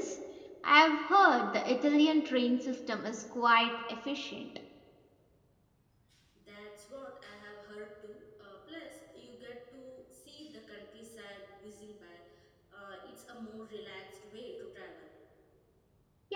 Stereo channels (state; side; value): identical; both; correlation 1.00